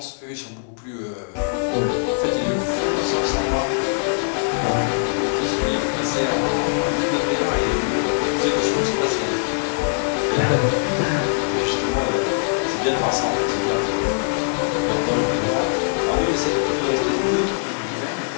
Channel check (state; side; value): silent; right; digital silence